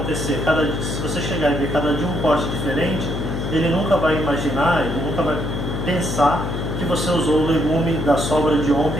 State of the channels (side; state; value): left; noise; hum, 3 dB below the sound